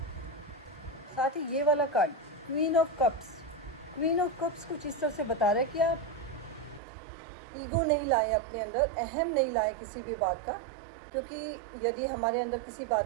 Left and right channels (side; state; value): left; drops out; at 6.8 s